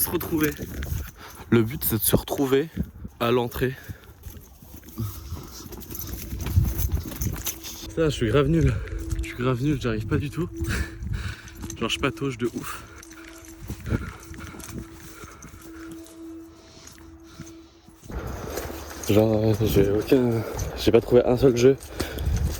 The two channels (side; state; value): both; identical; correlation 1.00